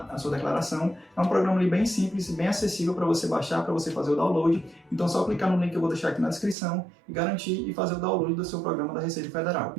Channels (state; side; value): drops out; left; at 6.6 s